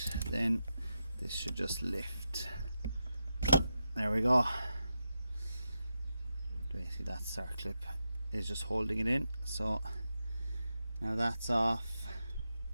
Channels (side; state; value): both; inverted; correlation -0.88